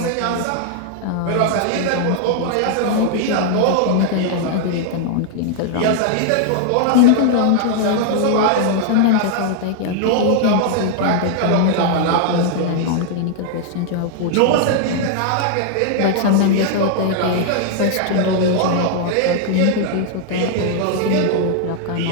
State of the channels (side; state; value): both; different; correlation 0.00